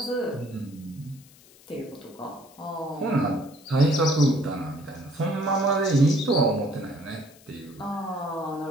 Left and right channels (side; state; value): left; noise; hiss, 25 dB below the sound